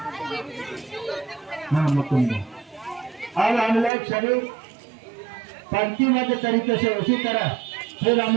हाँ मुकुंद, अब हम लोग सभी पंक्तिबद्ध तरीके से उसी तरह फिर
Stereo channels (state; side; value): drops out; left; at 3.9 s